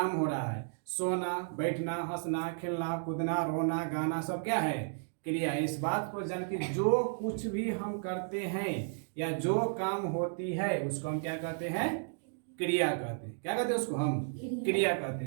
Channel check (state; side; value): silent; left; digital silence